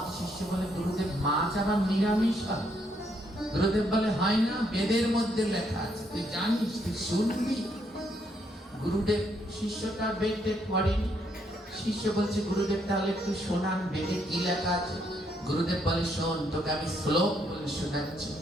শিষ্য বলে, গুরুদেব মাছ আবার নিরামিষ হয়? গুরুদেব বলে, হয় না, বেদের মধ্যে লেখা আছে, তুই জানিস, তুই শুনবি। গুরুদেব শিষ্যটা বেদে পড়েনি। শিষ্য বলছে, গুরুদেব তাহলে একটু শোনান, বেদে কি লেখা আছে? গুরুদেব বলে, শোন, তোকে আমি শ্লোক বলে শোনাচ্ছি।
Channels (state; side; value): normal; both; correlation 0.73